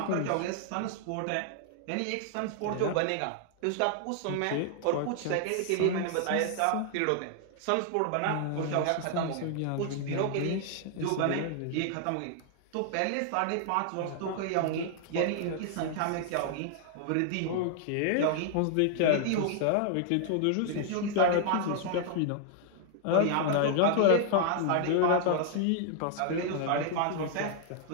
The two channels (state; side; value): different; both; correlation 0.00